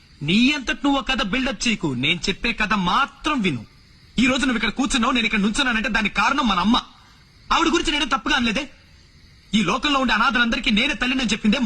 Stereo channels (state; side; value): identical; both; correlation 1.00